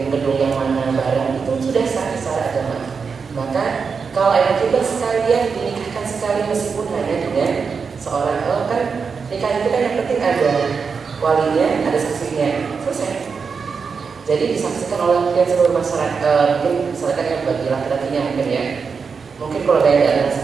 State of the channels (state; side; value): quieter; left; 5.5 dB